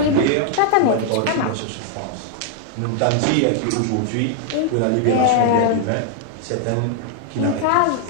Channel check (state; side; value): different; both; correlation 0.00